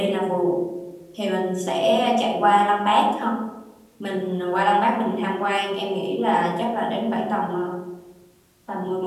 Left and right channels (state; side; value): identical; both; correlation 1.00